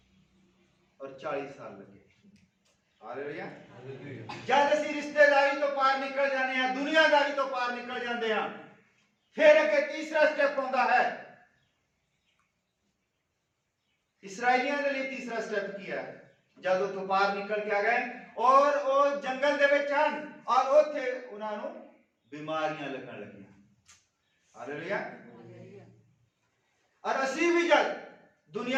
ਔਰ 40 ਸਾਲ ਲੱਗੇ। ਹਾਲੇਲੂਇਆ। ਜਦ ਅਸੀਂ ਰਿਸ਼ਤੇਦਾਰੀ ਤੋਂ ਪਾਰ ਨਿਕਲ ਜਾਂਦੇ ਹਾਂ, ਦੁਨੀਆਦਾਰੀ ਤੋਂ ਪਾਰ ਨਿਕਲ ਜਾਂਦੇ ਹਾਂ, ਫਿਰ ਅੱਗੇ ਤੀਸਰਾ ਸਟੈਪ ਆਉਂਦਾ ਹੈ। ਇਸਰਾਇਲੀਆਂ ਦੇ ਲਈ ਤੀਸਰਾ ਸਟੈਪ ਕੀ ਹੈ? ਜਦ ਉਹ ਤੋਂ ਪਾਰ ਨਿਕਲ ਕੇ ਆ ਗਏ ਔਰ ਉਹ ਜੰਗਲ ਦੇ ਵਿੱਚ ਹਨ, ਔਰ ਉੱਥੇ ਉਹਨਾਂ ਨੂੰ ਬਿਮਾਰੀਆਂ ਲੱਗਣ ਲੱਗੀਆਂ। ਹਾਲੇਲੂਇਆ। ਔਰ ਅਸੀਂ ਵੀ ਜਦ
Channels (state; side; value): identical; both; correlation 1.00